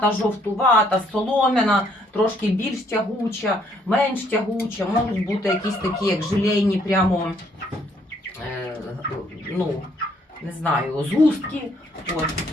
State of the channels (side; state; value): both; normal; correlation 0.67